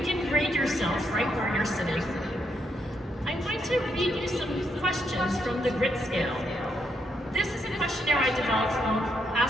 can grade yourself right where you're sitting. I'm going to read you some questions from the grit scale. This is a questionnaire I developed from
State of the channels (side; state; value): both; normal; correlation 0.77